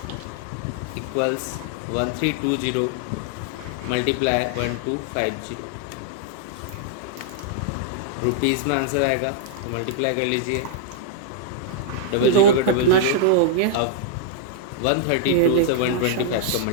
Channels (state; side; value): different; both; correlation -0.01